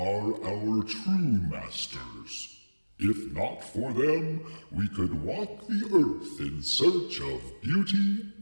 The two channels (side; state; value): both; inverted; correlation -1.00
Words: our true masters. If not for them, we could walk the earth in search of beauty